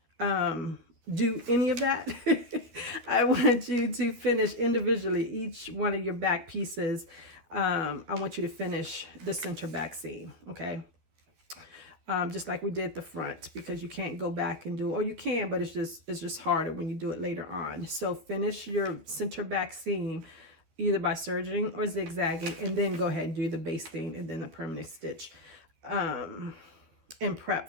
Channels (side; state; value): left; late; 12 ms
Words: do any of that, I want you to finish individually each one of your back pieces. I want you to finish the center back seam, okay? Just like we did the front, because you can't go back and do, or you can, but it's just harder when you do it later on. So finish your center back seam either by serging or zigzagging, and then go ahead and do the basting and then the permanent stitch, and